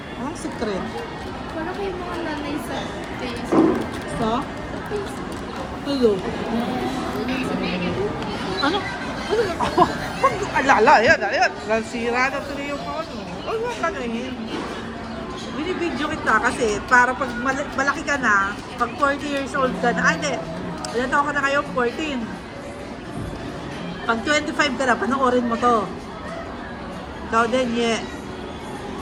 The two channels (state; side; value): identical; both; correlation 1.00